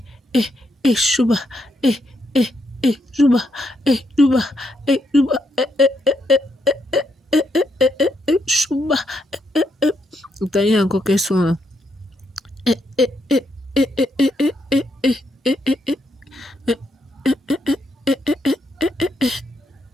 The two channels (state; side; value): normal; both; correlation 0.78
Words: chouba, chouba, chouba, chouba, T'as eu encore quel son là?